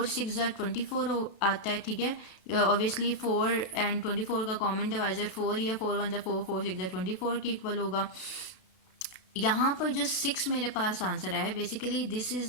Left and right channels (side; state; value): right; late; 32 ms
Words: 6 24 आता है, ठीक है। ऑब्वियसली 4 एंड 24 का कॉमन डिवाइजर 4 ही है, 4 1 4 4 6 24 के इक्वल होगा। यहाँ पर जो 6 मेरे पास आंसर है, basically this